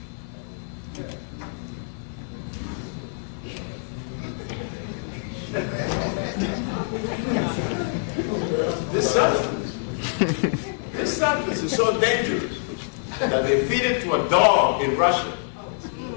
This substance is so dangerous that they feed it to a dog in Russia.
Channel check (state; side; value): silent; right; digital silence